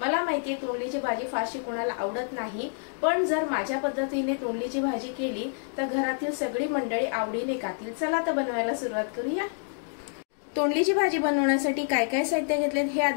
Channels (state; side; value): silent; right; digital silence